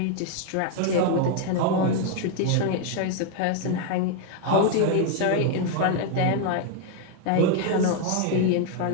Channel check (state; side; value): different; both; correlation 0.00